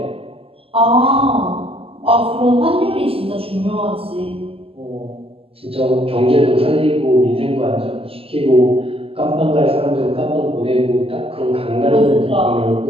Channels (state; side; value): late; left; 0.28 ms